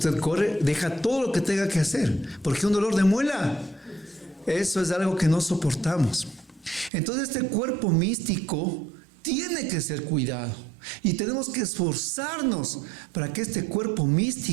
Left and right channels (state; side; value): drops out; left; at 6.9 s